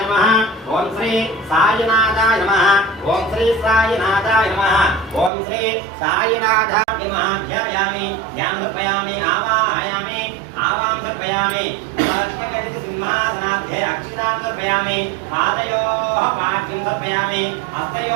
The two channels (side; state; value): left; drops out; at 5.3 s